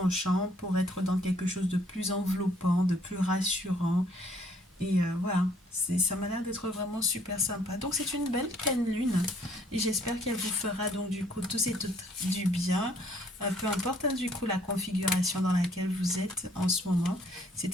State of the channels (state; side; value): normal; both; correlation 0.63